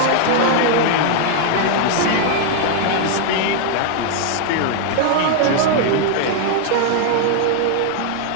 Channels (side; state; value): both; different; correlation 0.00